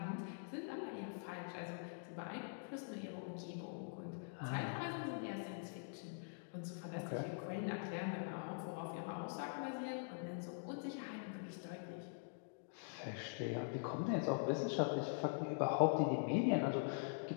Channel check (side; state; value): right; silent; digital silence